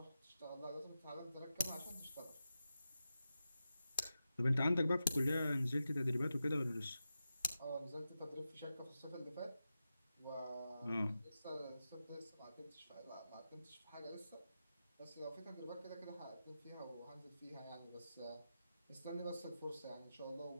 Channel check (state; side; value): inverted; both; correlation -0.92